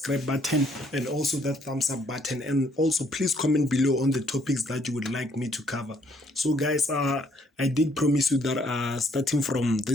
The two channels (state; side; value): normal; both; correlation 0.67